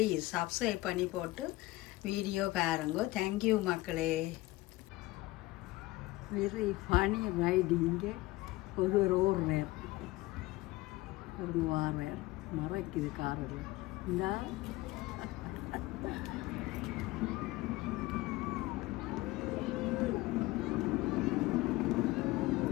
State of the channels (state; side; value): quieter; right; 19.4 dB